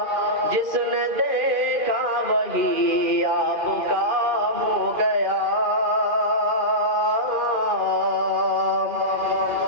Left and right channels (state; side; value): late; left; 2.5 ms